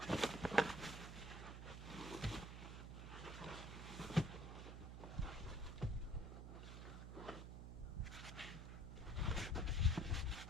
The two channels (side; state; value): right; noise; hum, 8 dB below the sound